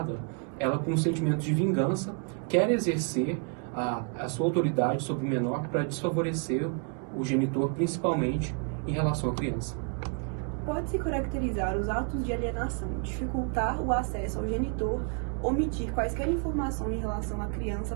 ela com um sentimento de vingança quer exercer a sua autoridade sobre o menor para desfavorecer o genitor, principalmente em relação à criança. Pode-se caracterizar os atos de alienação, dificultar o acesso ao genitor, omitir quaisquer informações em relação à criança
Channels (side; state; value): left; quieter; 39.8 dB